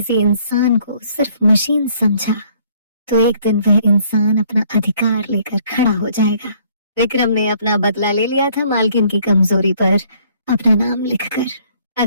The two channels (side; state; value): both; inverted; correlation -0.62